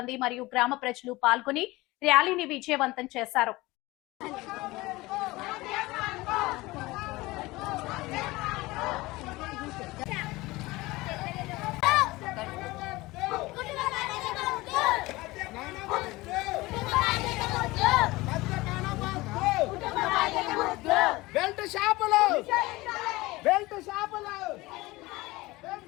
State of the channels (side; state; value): right; quieter; 20.7 dB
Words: మరియు గ్రామ ప్రజలు పాల్గొని ర్యాలీని విజయవంతం చేశారు. బెల్ట్ షాపులు